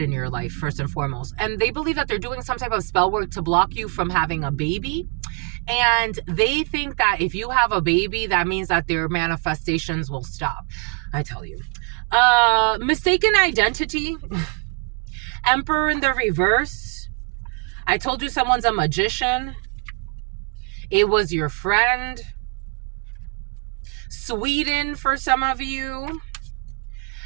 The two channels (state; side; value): quieter; left; 37.7 dB